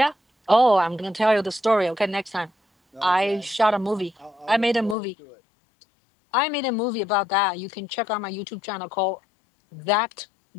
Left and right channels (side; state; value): right; drops out; at 5.0 s